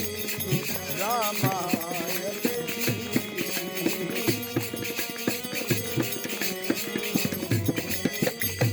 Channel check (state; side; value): identical; both; correlation 1.00